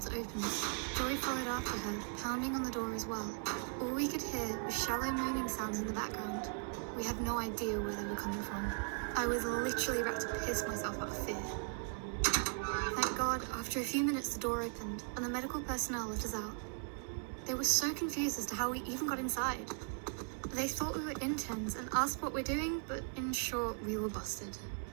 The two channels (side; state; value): left; silent; 52 dB below the other